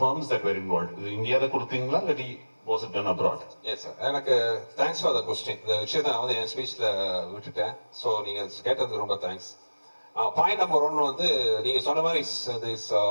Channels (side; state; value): both; inverted; correlation -1.00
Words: firms that were involved. இந்தியாவில் கொடுத்தீங்களா இல்லாட்டி was it done abroad? Yes sir, எனக்கு thanks for the question. இந்த விஷயத்தை நான் வந்து என் ஸ்பீச்ல விட்டுட்டேன். ஸோ நீங்க கேட்டதுக்கு ரொம்ப தேங்க்ஸ். பாயிண்ட் நம்பர் 1 வந்து நீங்க சொன்ன மாதிரி this